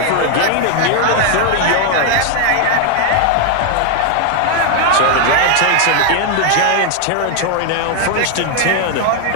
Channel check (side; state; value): both; different; correlation 0.00